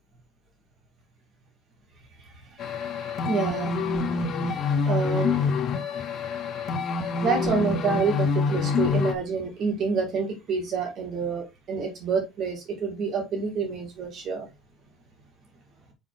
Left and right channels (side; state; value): both; normal; correlation 0.53